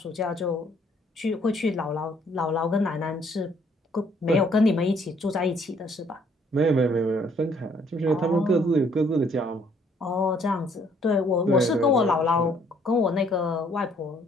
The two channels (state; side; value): normal; both; correlation 0.64